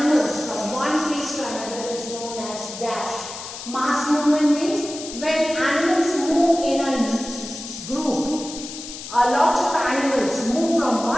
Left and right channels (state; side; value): noise; left; hiss, 11 dB below the sound